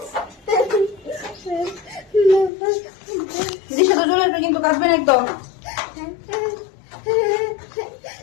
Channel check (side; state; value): right; drops out; at 2.5 s